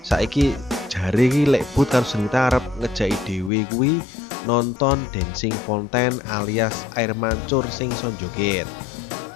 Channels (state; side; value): drops out; right; at 3.5 s